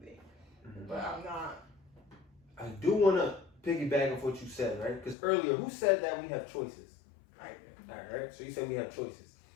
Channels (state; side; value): drops out; right; at 5.2 s